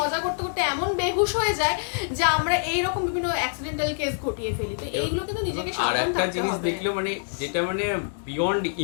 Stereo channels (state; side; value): silent; right; digital silence